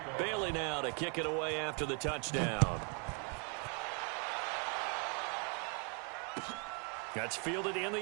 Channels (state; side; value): quieter; left; 37.8 dB